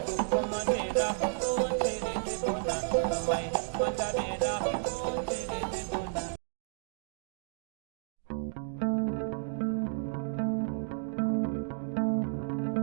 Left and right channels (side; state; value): left; silent; digital silence